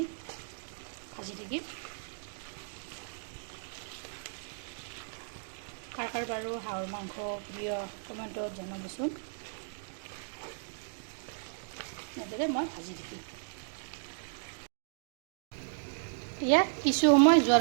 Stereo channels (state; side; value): silent; left; digital silence